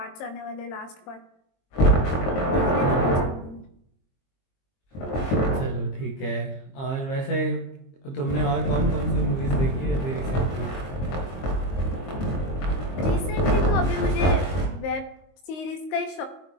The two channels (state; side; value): late; right; 22 ms